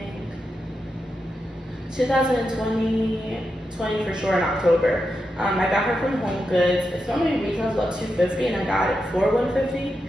2020 for sure in October. I got her from Home Goods. It's normally retails about $250 and I got it for $150.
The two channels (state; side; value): normal; both; correlation 0.87